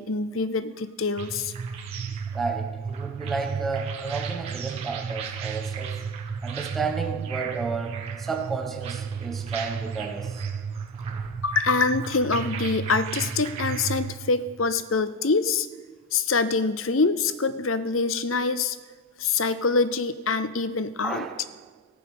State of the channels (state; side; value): normal; both; correlation 0.16